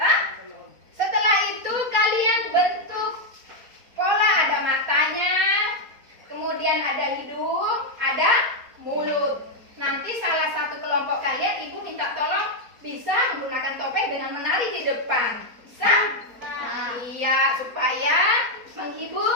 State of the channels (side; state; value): left; late; 4.2 ms